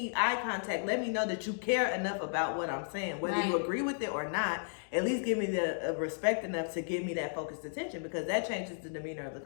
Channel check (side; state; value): right; silent; digital silence